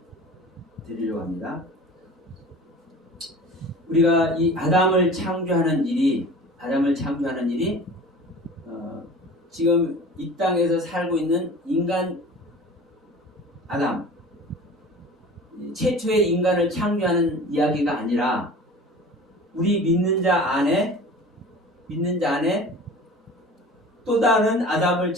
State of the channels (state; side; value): normal; both; correlation 0.40